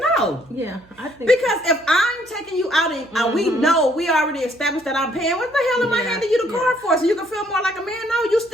no. Yeah, I think. Because if I'm taking you out and we know, we already established that I'm paying, what the hell am I Yeah, handing you the yeah. card for? So you can feel more like a man? No, you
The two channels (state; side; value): noise; right; hum, 29 dB below the sound